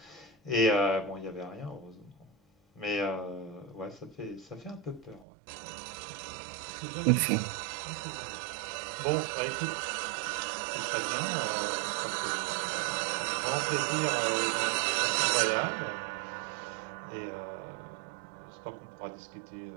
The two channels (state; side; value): drops out; left; at 5.2 s